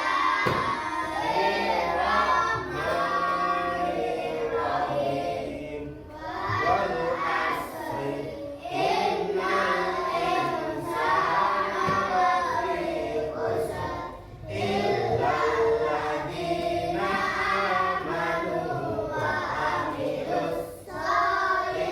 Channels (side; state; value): both; identical; correlation 1.00